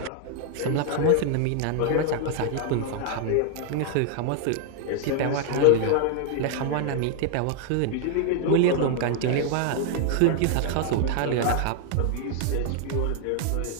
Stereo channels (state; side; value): different; both; correlation 0.00